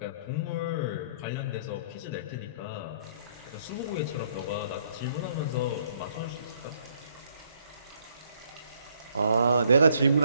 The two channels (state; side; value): inverted; both; correlation -0.67